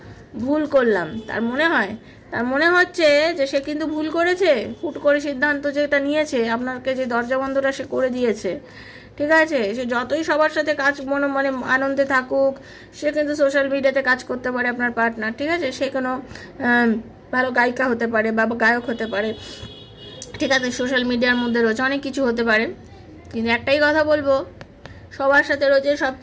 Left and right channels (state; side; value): identical; both; correlation 1.00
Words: ভুল করলাম। তার মনে হচ্ছে যে সে কিন্তু ভুল করেছে, হুট করে সিদ্ধান্ত যেটা নিয়েছে, আপনাকে যে দরজা বন্ধটা সে করে দিয়েছে, ঠিক আছে, সে যতই সবার সাথে কাজ মানে আনন্দে থাকুক, সে কিন্তু সোশ্যাল মিডিয়াতে কাজ করতে পারে আপনার পার্টনার, ঠিক আছে, সে কোনো ভালো গায়িকা হতে পারে বা গায়ক হতে পারে, ঠিক আছে, সোশ্যাল মিডিয়ার মধ্যে রয়েছে অনেক কিছু হতে পারে, কিন্তু একটাই কথা বলবো, সবার সাথে রয়েছে, সব